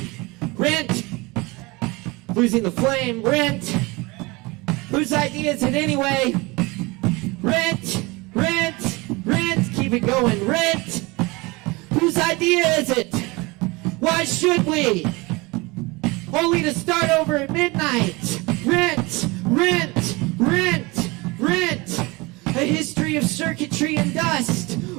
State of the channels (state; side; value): quieter; left; 24.5 dB